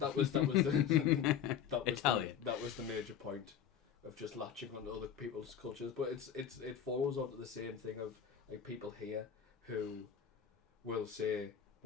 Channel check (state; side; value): quieter; right; 8.6 dB